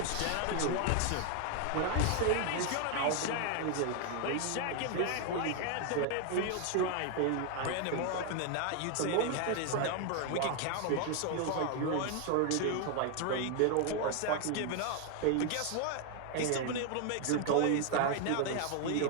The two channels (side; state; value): both; different; correlation 0.01